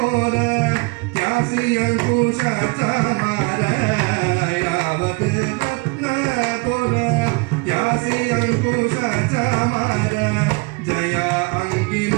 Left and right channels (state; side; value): quieter; left; 27.6 dB